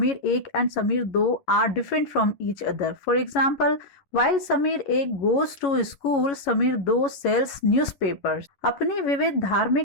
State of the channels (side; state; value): right; late; 11 ms